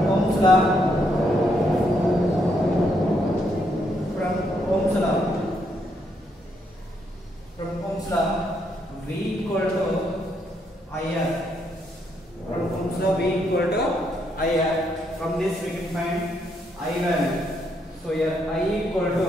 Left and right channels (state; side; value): normal; both; correlation 0.75